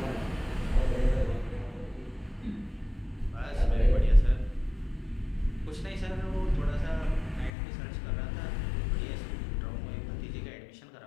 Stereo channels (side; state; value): right; drops out; at 7.5 s